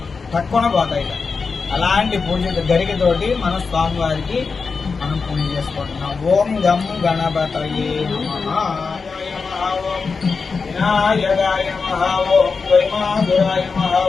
తక్కువ పోతాయి. అలాంటి పూజ గరికతోటి మన స్వామివారికి మనం పూజ చేసుకుంటున్నాం. ఓం గం గణపతయే నమః. వినాయకాయ నమః. ఓం వైమాధురాయ నమః.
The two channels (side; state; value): right; quieter; 4.8 dB